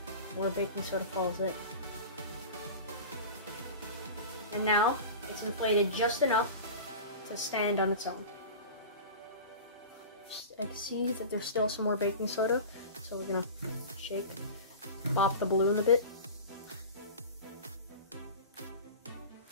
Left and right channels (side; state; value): both; inverted; correlation -0.33